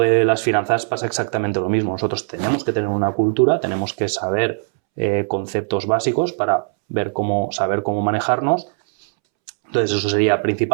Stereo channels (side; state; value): left; silent; 66 dB below the other